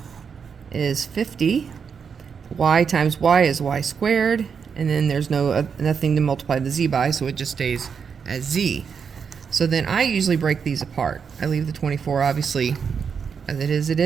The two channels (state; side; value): quieter; left; 6.4 dB